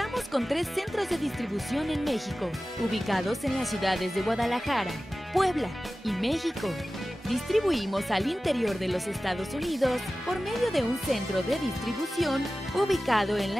con 3 centros de distribución en México, ubicados en las ciudades de Guadalajara, Puebla y México. Distribuimos al interior de los Estados Unidos por medio de un centro de distribución ubicado en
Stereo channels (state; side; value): normal; both; correlation 0.96